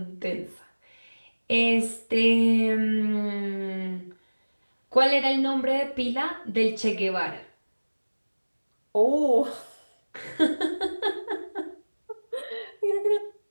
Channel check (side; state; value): both; inverted; correlation -1.00